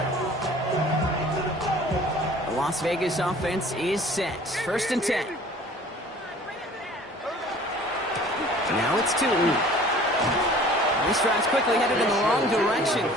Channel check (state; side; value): normal; both; correlation 0.49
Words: The Las Vegas offense is set. 1st and 10. Now it's Tootin. This drive's quickly headed in the wrong direction.